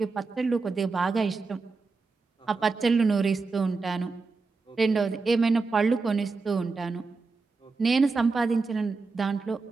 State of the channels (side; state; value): left; quieter; 4.2 dB